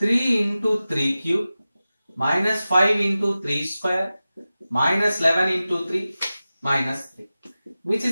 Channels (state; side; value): inverted; both; correlation -0.95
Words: into 3 cube minus 5 into 3 square minus 11 into 3 minus 3, which